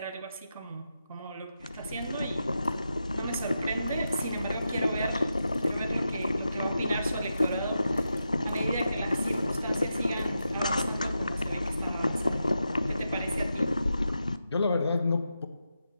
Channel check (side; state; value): both; inverted; correlation -0.88